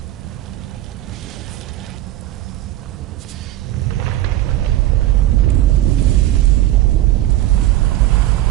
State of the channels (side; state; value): left; quieter; 14.7 dB